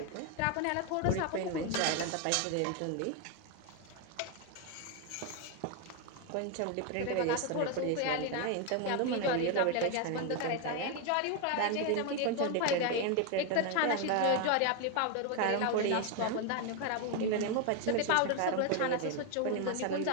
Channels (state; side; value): different; both; correlation 0.01